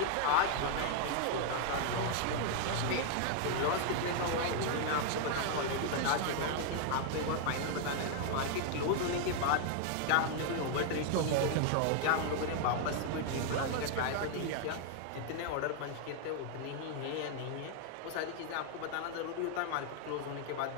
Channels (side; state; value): both; different; correlation 0.00